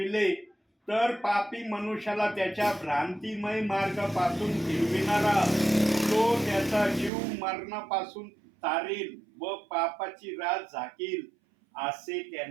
तर पापी मनुष्याला त्याच्या भ्रांतिमय मार्गापासून फिरविणारा तो त्याचा जीव मरणापासून तारील व पापाची रास झाकील असे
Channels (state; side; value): drops out; left; at 7.1 s